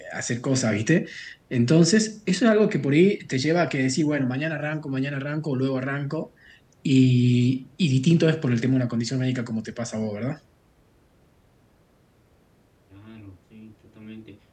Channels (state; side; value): identical; both; correlation 1.00